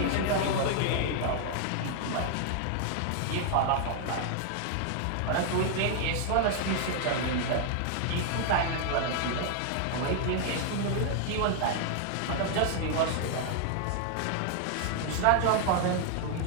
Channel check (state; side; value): different; both; correlation 0.00